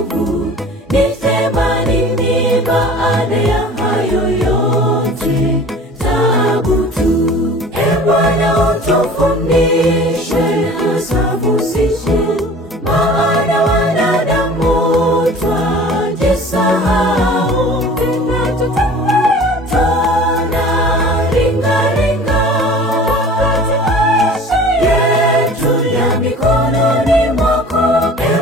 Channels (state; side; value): normal; both; correlation 0.44